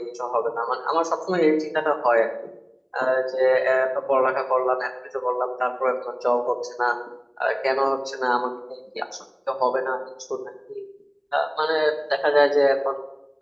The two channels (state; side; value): identical; both; correlation 1.00